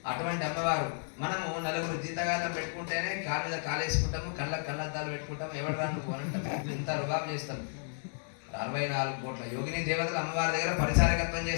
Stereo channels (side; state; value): right; silent; digital silence